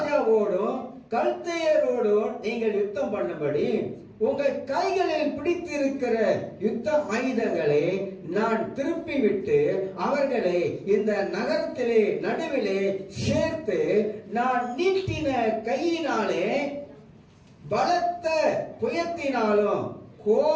கல்தேயரோடும் நீங்கள் யுத்தம் பண்ணும்படி உங்கள் கைகளில் பிடித்திருக்கிற யுத்த ஆயுதங்களை நான் திருப்பி விட்டு அவர்களை இந்த நகரத்திலே நடுவிலே சேர்த்து நான் நீட்டின கையினாலே பலத்த புயத்தினாலும்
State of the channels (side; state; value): both; identical; correlation 1.00